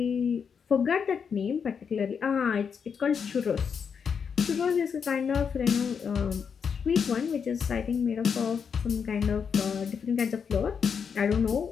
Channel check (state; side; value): quieter; right; 6.6 dB